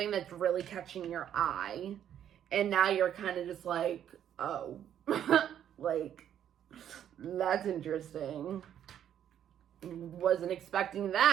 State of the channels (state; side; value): quieter; left; 10.0 dB